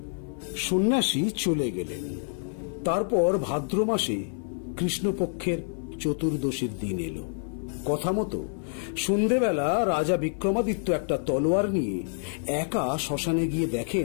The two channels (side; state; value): right; silent; 58 dB below the other